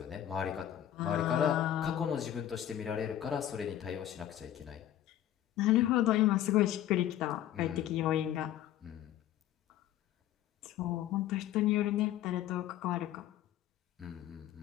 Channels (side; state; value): right; quieter; 11.9 dB